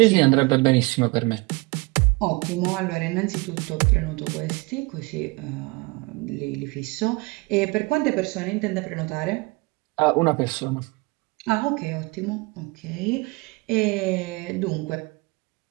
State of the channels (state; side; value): quieter; left; 26.3 dB